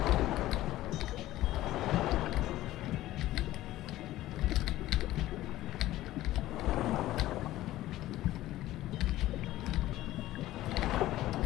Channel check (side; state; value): right; quieter; 15.4 dB